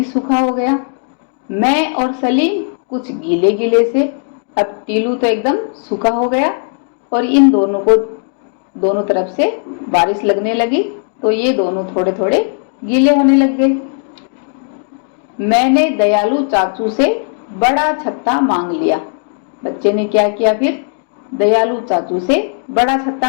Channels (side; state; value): right; silent; 58 dB below the other